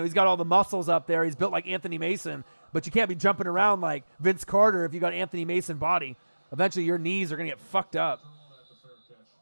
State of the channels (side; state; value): both; inverted; correlation -1.00